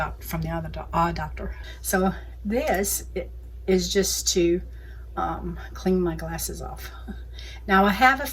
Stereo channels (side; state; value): both; identical; correlation 1.00